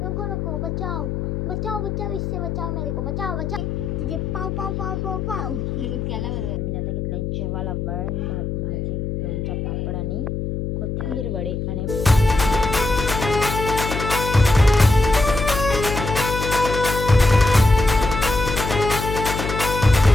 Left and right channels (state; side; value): noise; left; hum, 3 dB below the sound